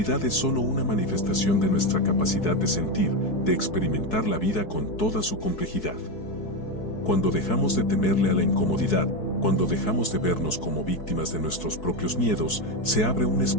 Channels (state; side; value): late; right; 4.6 ms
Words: es solo una manifestación de nuestra capacidad de sentir, de experimentar la vida con toda su complejidad. Cuando dejamos de temerle a la incomodidad, Cuando dejamos de vernos como víctimas de nuestros propios miedos, se abre un